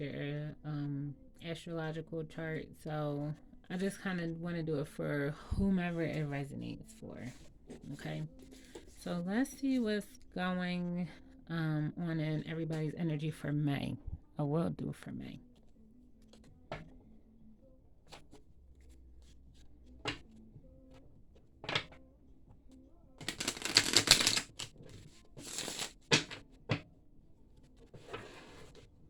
astrological chart. So, I just kind of want to do it for whomever it resonates for. Okay. So, let's see what's going on in everybody's energy for May. I will do for May.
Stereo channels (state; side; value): identical; both; correlation 1.00